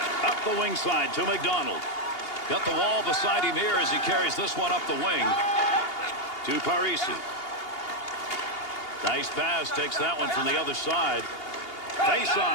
Up the wing side to McDonald. Got the wall beside him here as he carries this one up the wing to Parisi. Nice pass. Takes that one from the other side.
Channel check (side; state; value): right; late; 2.8 ms